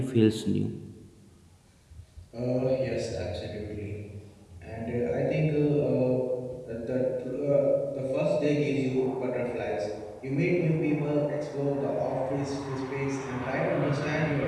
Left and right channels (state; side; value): identical; both; correlation 1.00